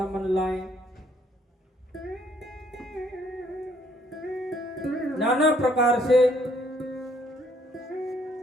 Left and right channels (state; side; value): normal; both; correlation 0.65